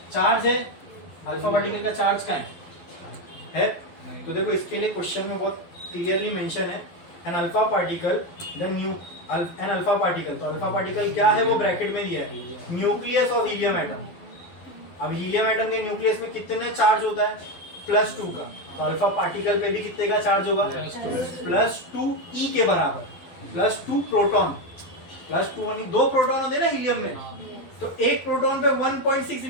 चार्ज है, अल्फा पार्टिकल का चार्ज का है। तो देखो इसके लिए क्वेश्चन में बहुत क्लियरली मेंशन है, an alpha particle then an alpha particle. तो अल्फा पार्टिकल क्या है वो ब्रैकेट में दिया है, न्यूक्लियस ऑफ हीलियम एटम। अब हीलियम एटम के न्यूक्लियस में कितने चार्ज होता है, +2 का। तो अल्फा पार्टिकल पे भी कितने का चार्ज होगा, +2 ई के बराबर, +2 प्रोटॉन, +2 यानी 2 प्रोटॉन होते हैं ना हीलियम में। तो एक प्रोटॉन पे 1.6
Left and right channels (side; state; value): right; late; 12 ms